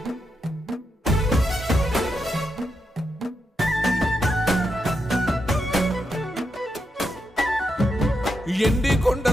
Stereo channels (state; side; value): normal; both; correlation 0.84